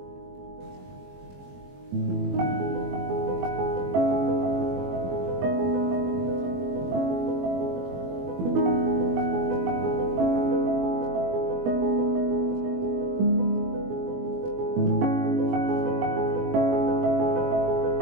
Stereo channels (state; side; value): late; left; 21 ms